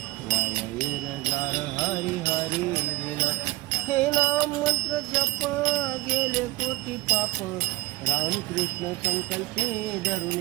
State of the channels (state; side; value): quieter; left; 19.8 dB